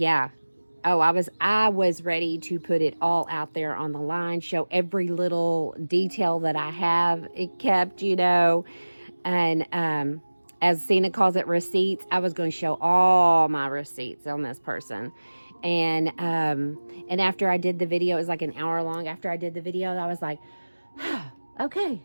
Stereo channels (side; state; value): both; inverted; correlation -1.00